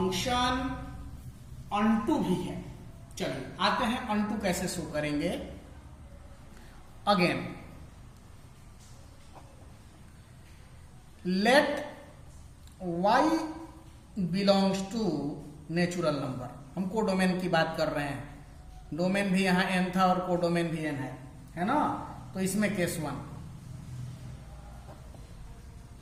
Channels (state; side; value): identical; both; correlation 1.00